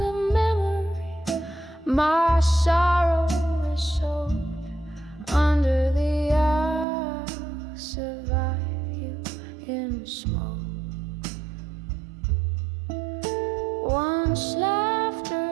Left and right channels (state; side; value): drops out; left; at 6.9 s